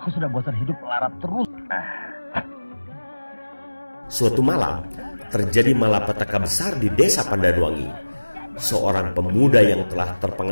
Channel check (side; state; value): both; inverted; correlation -1.00